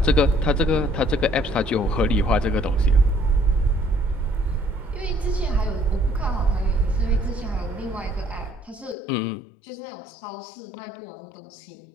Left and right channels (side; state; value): right; drops out; at 9.0 s